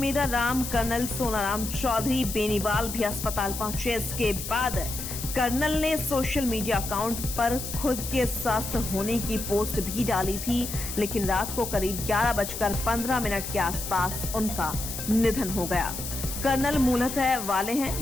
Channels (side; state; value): left; noise; hiss, 7 dB below the sound